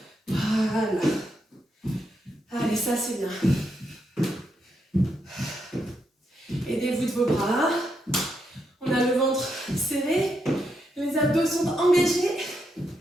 Voilà. Allez, ça c'est bien. Aidez-vous de vos bras. On a le ventre serré. Les abdos sont engagés.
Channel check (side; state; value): both; normal; correlation 0.81